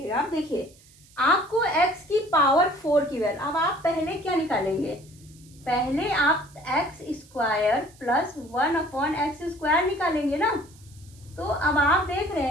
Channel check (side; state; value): right; noise; hiss, 26 dB below the sound